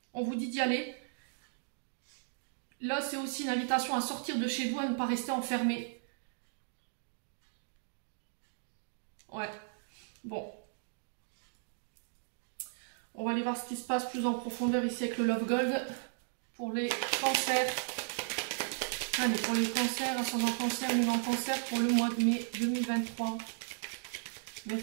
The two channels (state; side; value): silent; left; digital silence